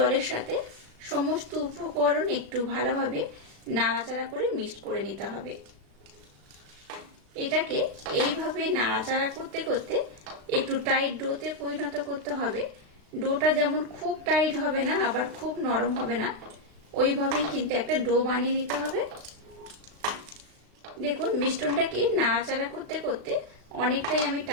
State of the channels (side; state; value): left; late; 36 ms